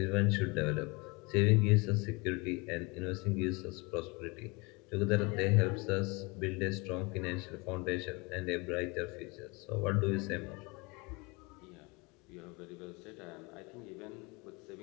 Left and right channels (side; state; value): right; quieter; 27.3 dB